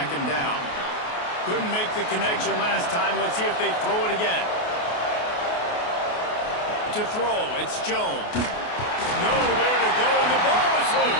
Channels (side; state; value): right; late; 28 ms